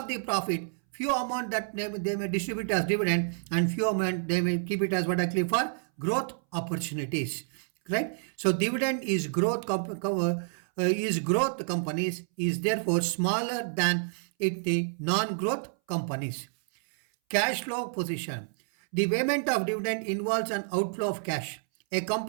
the profit, few amount that they may distribute as dividend, and few amount they may keep it as what actually for growth opportunities, right? So dividend is growth companies is therefore smaller than the non-growth companies. Cash flow position. The payment of dividend involves an outflow of cash. A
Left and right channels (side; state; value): left; silent; 59 dB below the other